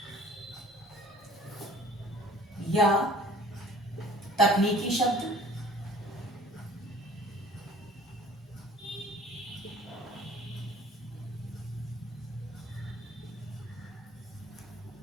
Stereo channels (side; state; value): both; normal; correlation 0.52